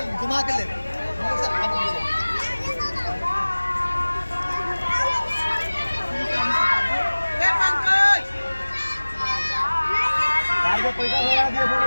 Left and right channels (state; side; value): inverted; both; correlation -1.00